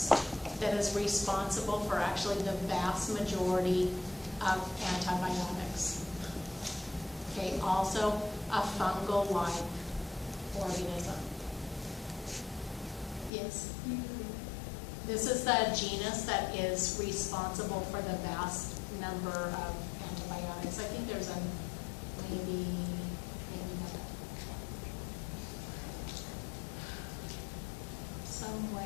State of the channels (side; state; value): right; drops out; at 13.3 s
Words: that is responsible for actually the vast majority of antibiotics. Okay, also a fungal-like organism. Yes? This is the genus that is responsible for the vast number of antibiotics. I think there's a maybe not.